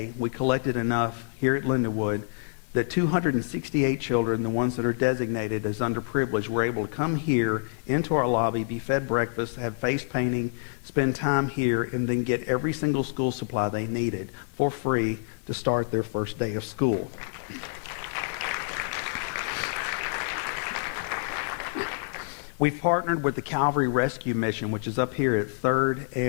we collected enough here at Lindenwood that 268 children, the ones that are designated as underprivileged, were able to come here into our lobby, be fed breakfast, have face painting, spend time here, and then get every single school supply they needed for free to start their first day of school. We've partnered with the Calvary Rescue Mission, which is up here at 3rd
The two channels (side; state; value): right; silent; digital silence